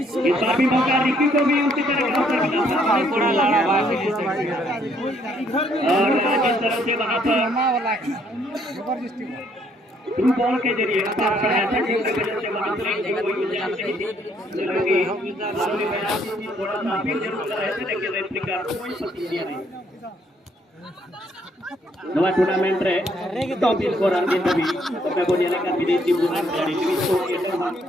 बार भी मौका रिकी को भी उसी तरह का अवसर मिला और जिस तरह से वहां पर थ्रू बॉल के जरिए पास कराया था जिसकी वजह से वहां से कोई गुंजाइश नहीं थी, थोड़ा सा अपील जरूर कर रहे थे लेकिन रेफरी का कोई प्रतिक्रिया नहीं। नवा टूर्नामेंट रे टॉप स्कोरर के तभी मैं बोलिए का विदेशी बुनान खिलाड़ी लुइस कोटिया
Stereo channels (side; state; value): both; normal; correlation 0.68